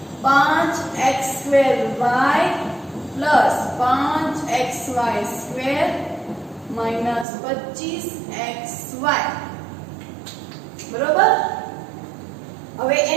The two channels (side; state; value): left; drops out; at 7.2 s